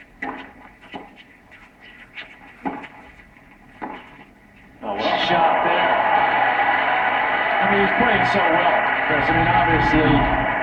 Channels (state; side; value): identical; both; correlation 1.00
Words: Oh, well, shot there. I mean, he's playing so well, Chris. I mean, obviously,